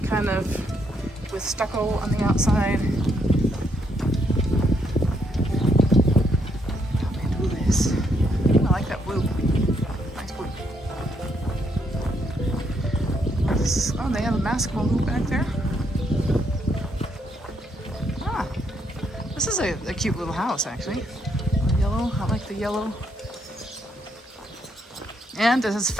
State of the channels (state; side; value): normal; both; correlation 0.74